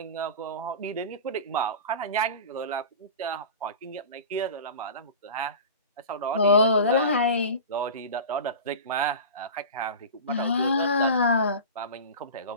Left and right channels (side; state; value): both; inverted; correlation -0.32